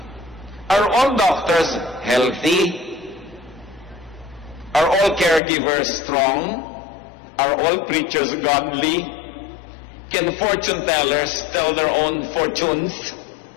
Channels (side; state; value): right; drops out; at 5.4 s